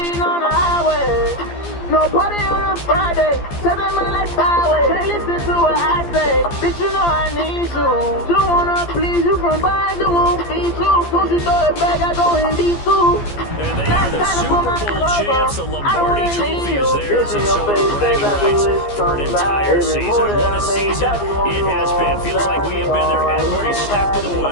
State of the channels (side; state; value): right; late; 15 ms